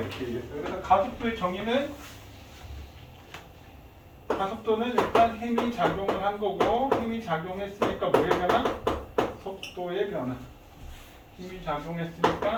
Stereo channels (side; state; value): both; identical; correlation 1.00